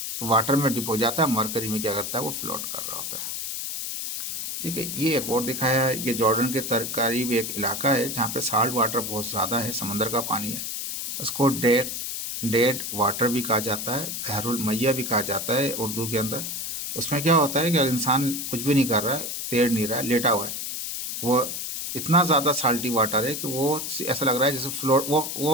तो वाटर में डिप हो जाता है, मरकरी में क्या करता है, वो फ्लोट कर रहा होता है। ठीक है, ये एक और दिखाया है, ये जॉर्डन के करीब एक इलाका है जहाँ पे साल्ट वाटर बहुत ज़्यादा है, समंदर का पानी है। उसको डेड वाटर भी कहा जाता है, बहरुल मैया भी कहा जाता है उर्दू के अंदर। उसमें क्या होता है कि इंसान कुछ भी नहीं कर रहा है, तैर नहीं रहा है, लेटा हुआ है, वो इतना ज़्यादा साल्टी वाटर है कि वो ऐसा लग रहा है जैसे फ्लोट,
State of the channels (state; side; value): noise; left; hiss, 5 dB below the sound